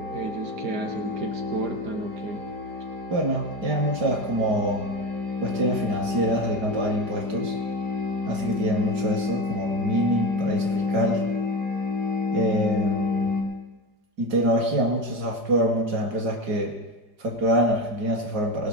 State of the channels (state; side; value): late; left; 4.9 ms